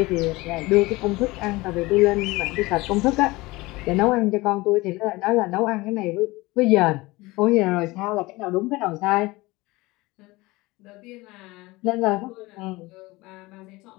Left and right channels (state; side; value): quieter; right; 21.5 dB